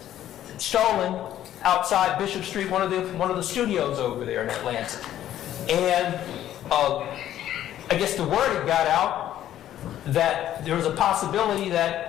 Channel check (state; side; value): quieter; right; 12.0 dB